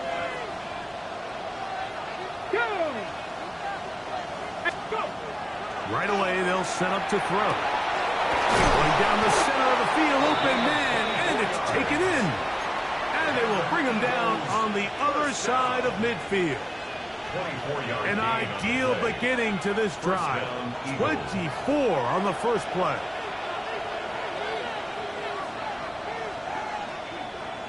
Right away, they'll set up to throw. Going down the center of the field, open man, and it's taken in. And they will bring him down on the other side of midfield. An ideal beginning to this drive. 24 on the first play.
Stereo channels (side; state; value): both; identical; correlation 1.00